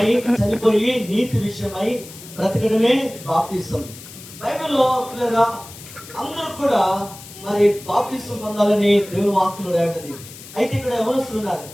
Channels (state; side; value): noise; left; hiss, 17 dB below the sound